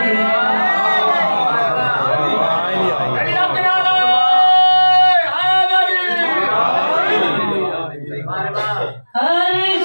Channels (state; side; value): inverted; both; correlation -1.00